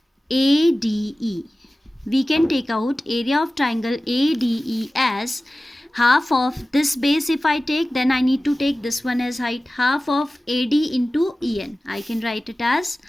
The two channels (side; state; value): both; normal; correlation 0.96